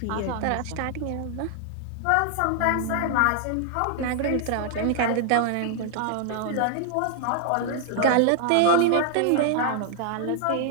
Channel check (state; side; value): different; both; correlation 0.00